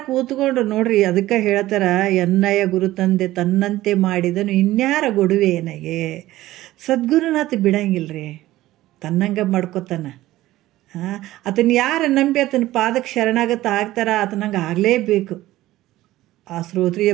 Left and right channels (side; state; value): left; quieter; 16.1 dB